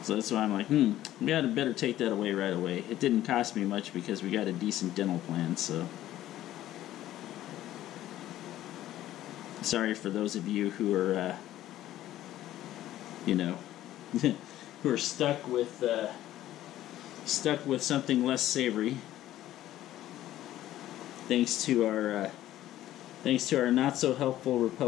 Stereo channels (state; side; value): quieter; right; 13.7 dB